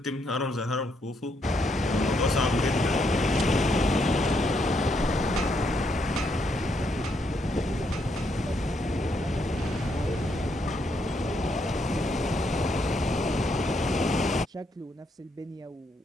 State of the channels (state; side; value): normal; both; correlation 0.76